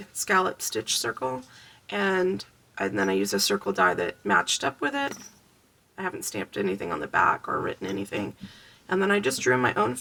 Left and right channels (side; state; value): both; identical; correlation 1.00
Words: scallop stitch circle, and then I used a circle die that matched up with it. I haven't stamped anything on the back or written anything. And then I just drew my own